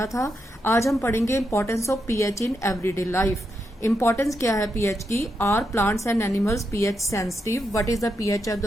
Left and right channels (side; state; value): both; normal; correlation 0.83